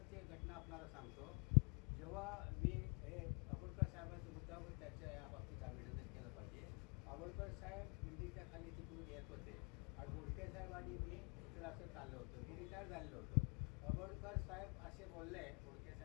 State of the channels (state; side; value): quieter; right; 37.1 dB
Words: घटना आपल्याला सांगतो. जेव्हा मी हे आंबेडकर साहेबांचा मुद्दावर त्याच्या या बाबतीत अभिनंदन केलं पाहिजे. आंबेडकर साहेब बिल्डिंगच्या खाली तिकडून येत होते आणि बोडके साहेब आणि मी इकडं असं चाललो होतो. मी रिटायर झालेलो होतो. आंबेडकर साहेब असे बोलले बोडके